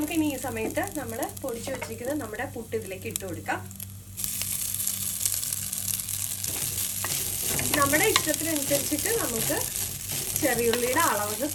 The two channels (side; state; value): both; identical; correlation 1.00